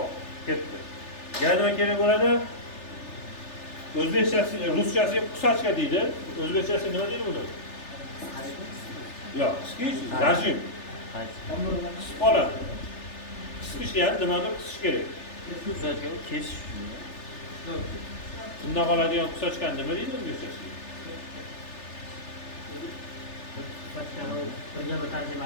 ketdi. Yana nima kerak bo'ladi? O'zbekchasi, ruschasiga qusachka deydi. O'zbekchasi nima deydi buni? Yo'q, qisqish, rajim. Qisib qoladi. Qisqish ham nimadir qisish kerak. Qusachka kesish. Bundan qoladigan qusachkani nima deydi o'zbekchasiga? Qusachkani birga bir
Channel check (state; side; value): late; right; 3.4 ms